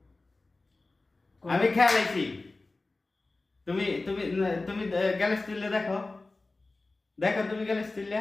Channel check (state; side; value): quieter; right; 3.3 dB